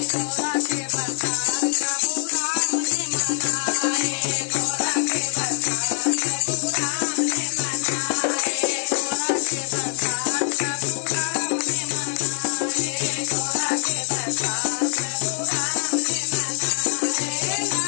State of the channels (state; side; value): silent; right; digital silence